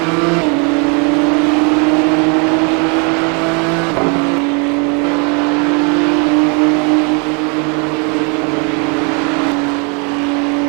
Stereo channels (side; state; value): left; quieter; 35.4 dB